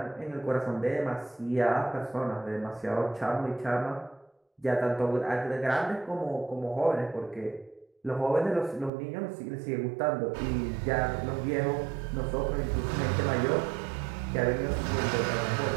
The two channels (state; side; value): drops out; left; at 8.9 s